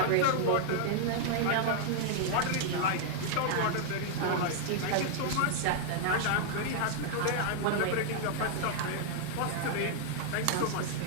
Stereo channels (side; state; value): both; different; correlation 0.00